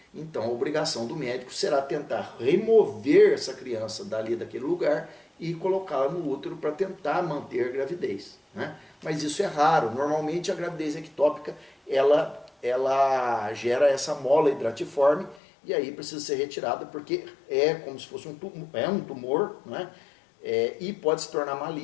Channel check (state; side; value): drops out; right; at 15.4 s